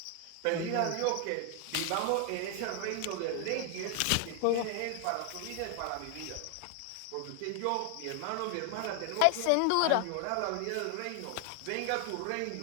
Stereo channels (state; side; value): different; both; correlation 0.00